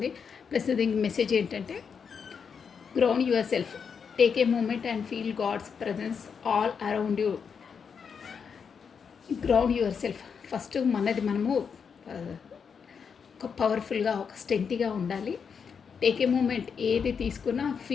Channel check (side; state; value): right; quieter; 6.4 dB